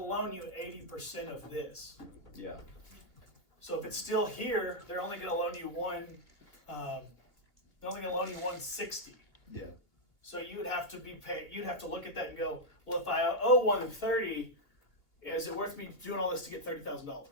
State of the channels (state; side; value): late; right; 2.9 ms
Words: loan you 80% of this. Yeah. So if it's still here, they're only going to loan you they're only going to loan you 160. Yeah. So you would have to be paid. You'd have to look at that and go, well, if I owe 130, is it worth me doing all this to get $30,000?